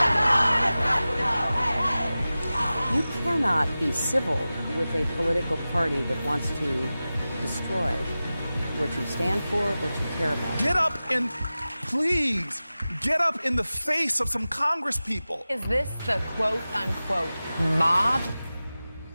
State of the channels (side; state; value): both; inverted; correlation -0.96